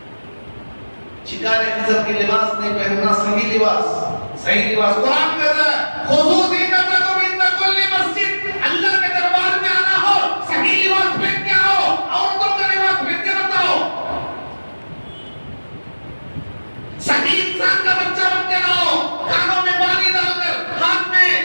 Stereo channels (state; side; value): inverted; both; correlation -1.00